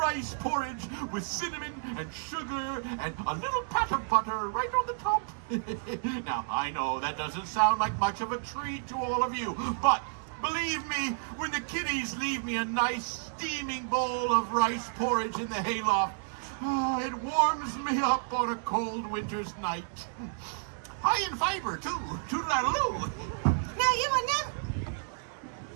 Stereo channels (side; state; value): left; silent; 57 dB below the other